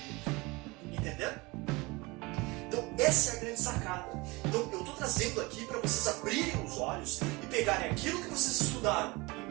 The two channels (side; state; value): left; quieter; 24.1 dB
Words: Entenderam? Então, essa é a grande sacada. Então, eu estou trazendo aqui para vocês abrirem os olhos e pegarem aquilo que vocês estudaram